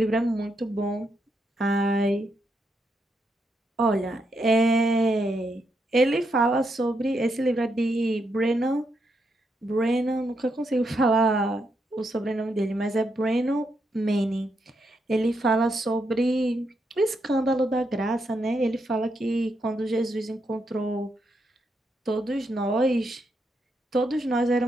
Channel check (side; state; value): both; normal; correlation 0.80